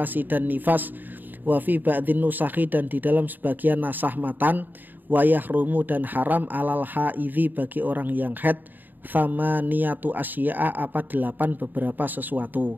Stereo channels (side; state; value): left; late; 0.089 ms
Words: dan nifas, wa fi ba'dhin nusakhi dan di dalam sebagian nasah matan, wa yahrumu dan haram alal haidhi bagi orang yang haid, thamaniyatu asya'a apa 8 beberapa sesuatu.